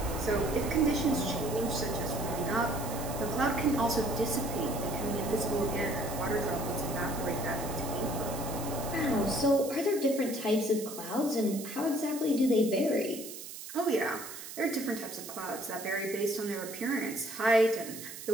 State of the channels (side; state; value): right; noise; hiss, 11 dB below the sound